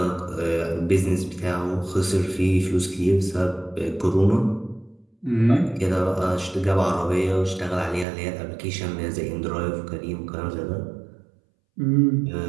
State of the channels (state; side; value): drops out; left; at 8.1 s